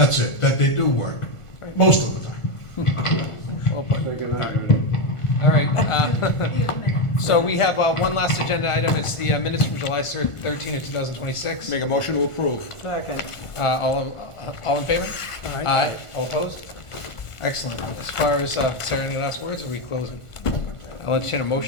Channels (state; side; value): late; right; 1.5 ms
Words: it, that they do work, most of the time. Well put. All right. So we have one last agenda item. It's the minutes from July 13 of 2026. Make a motion to approve. Second. All in favor? Aye. All opposed? Excellent. As far as, Sarah, any last words, or are we closing? I'll entertain a